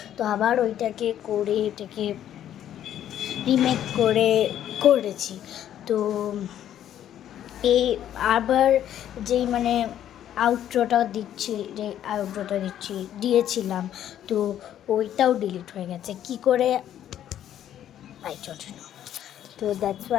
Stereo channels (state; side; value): quieter; right; 10.9 dB